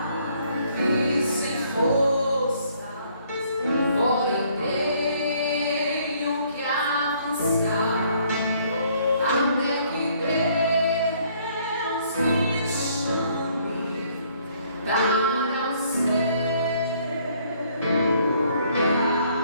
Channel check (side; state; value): both; inverted; correlation -0.64